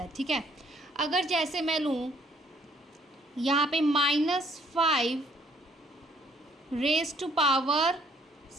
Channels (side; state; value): both; normal; correlation 0.64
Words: ठीक है, अगर जैसे मैं लूँ यहाँ पे -5 रेज टू पावर